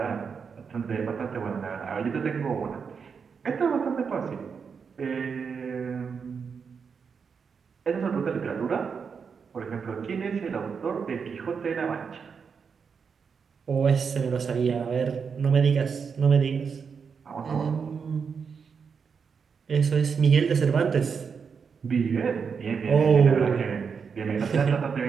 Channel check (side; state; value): left; quieter; 6.0 dB